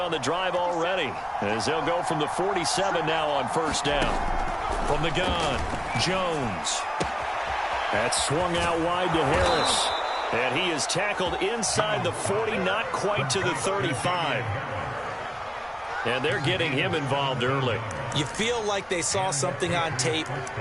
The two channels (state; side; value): identical; both; correlation 1.00